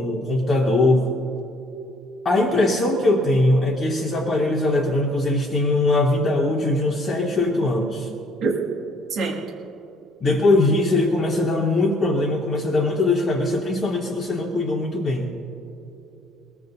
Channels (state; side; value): normal; both; correlation 0.62